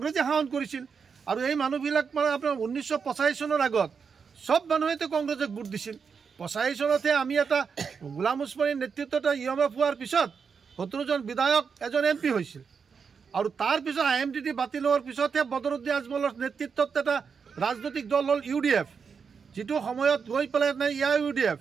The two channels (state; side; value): quieter; left; 6.0 dB